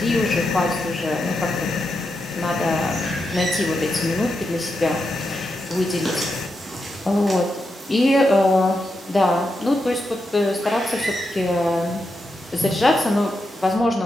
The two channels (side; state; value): both; normal; correlation 0.86